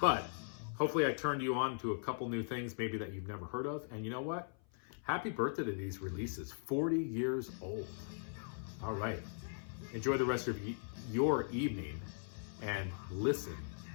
hopefully I turned you on to a couple new things maybe that you've never heard of. And you know what? Happy birthday to these releases. 40 years old. All right. Enjoy the rest of your evening and listen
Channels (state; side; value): silent; right; 52 dB below the other